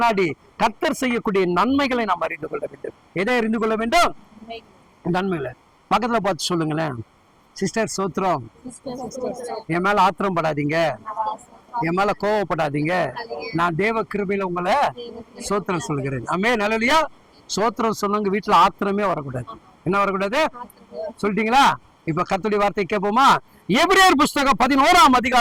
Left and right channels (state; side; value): identical; both; correlation 1.00